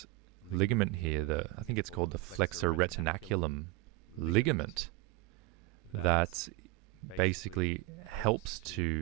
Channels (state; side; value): quieter; left; 21.1 dB